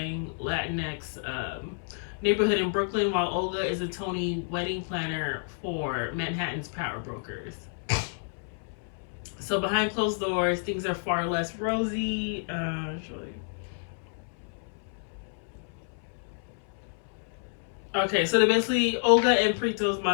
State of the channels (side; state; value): right; silent; 58 dB below the other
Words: Latinx neighborhood in Brooklyn, while Olga is a Tony wedding planner for Manhattan's power brokers. So behind closed doors, things are far less rosy. Okay, so basically Olga and Prieto's